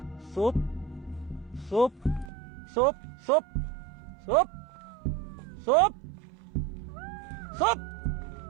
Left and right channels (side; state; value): left; drops out; at 2.3 s